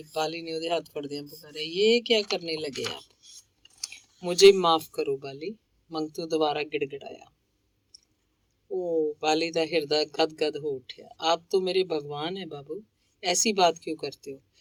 ਬਾਲੀ ਨੇ ਉਹਦੇ ਹੱਥ ਫੜਦਿਆਂ ਪੁਕਾਰਿਆ, ਇਹ ਕਿਆ ਕਰਨੇ ਲਗੇ ਆਪ? ਮੁਝੇ ਮਾਫ ਕਰੋ ਬਾਲੀ, ਮੰਗਤੂ ਦੁਬਾਰਾ ਗਿੜਗਿੜਾਇਆ। ਉਹ बाली का हृदय गदगद हो उठा। आप तो मेरे भगवान है बाबू, ऐसी बात क्यों करते हो?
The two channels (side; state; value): both; identical; correlation 1.00